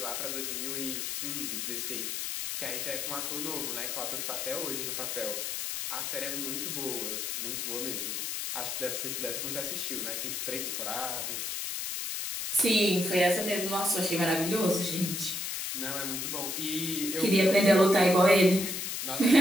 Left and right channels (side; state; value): left; noise; hiss, 3 dB below the sound